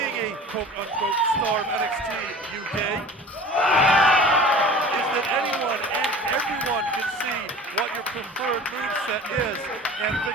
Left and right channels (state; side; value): normal; both; correlation 0.41